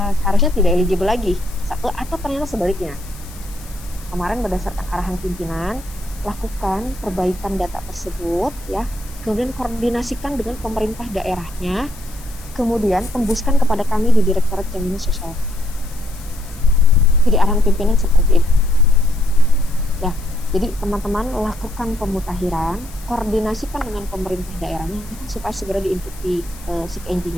seharusnya tidak eligible lagi, satu, atau ternyata sebaliknya. Kemarin berdasarkan arahan pimpinan, lakukan perbaikan data tersebut, ya. Kemudian koordinasikan dengan pemerintah daerahnya, kemudian tembuskan kepada kami di Direktorat Jaminan Sosial. Jadi arahan pimpinan seperti itu. Ya, jadi teman-teman lakukan pemutahiran, koordinasikan dengan pemerintah daerahnya supaya segera diinput di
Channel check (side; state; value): left; noise; hiss, 20 dB below the sound